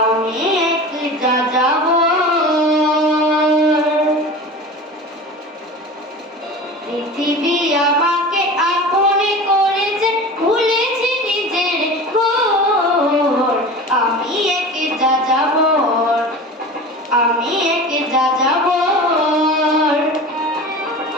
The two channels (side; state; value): both; normal; correlation 0.34